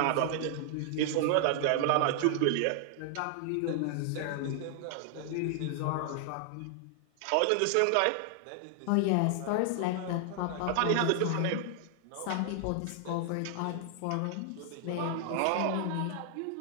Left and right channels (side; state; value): both; different; correlation 0.00